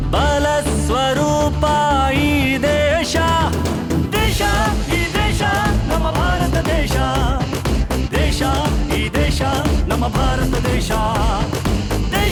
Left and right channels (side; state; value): both; identical; correlation 1.00